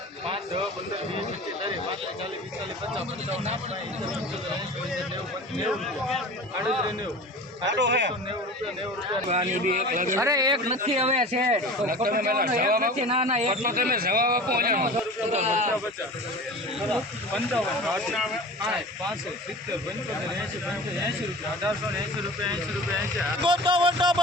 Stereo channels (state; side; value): normal; both; correlation 0.37